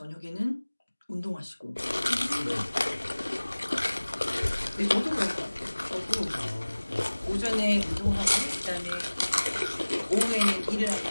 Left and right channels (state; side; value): inverted; both; correlation -1.00